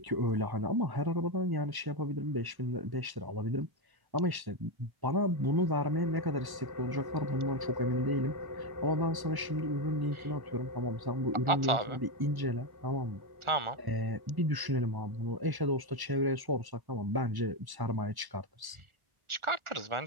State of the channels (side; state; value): left; late; 1.1 ms